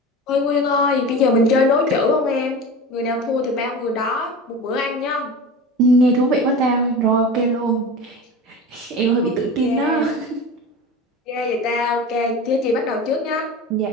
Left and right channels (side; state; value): both; normal; correlation 0.31